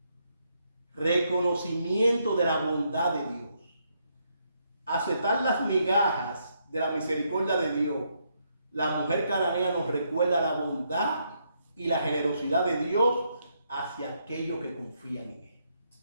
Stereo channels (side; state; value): both; inverted; correlation -0.76